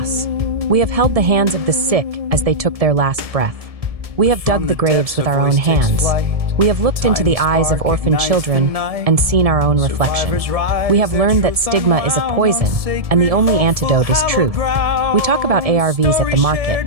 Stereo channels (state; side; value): late; left; 1.7 ms